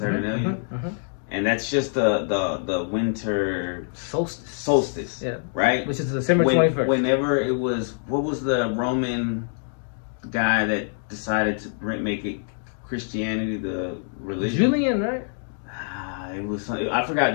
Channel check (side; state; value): right; silent; 62 dB below the other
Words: and that's just the winter solstice, Yeah. right? Which is December 21st. Whenever it was, what was the Roman guy that decided to make it Christianity the religion? Julian, right? It was I forgot.